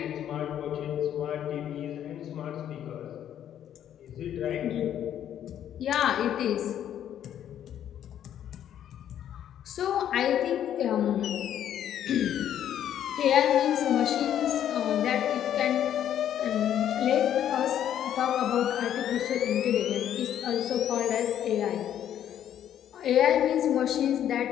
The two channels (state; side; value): quieter; right; 10.4 dB